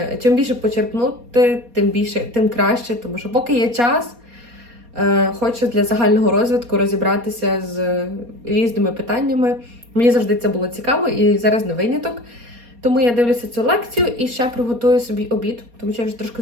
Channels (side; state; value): left; late; 4.2 ms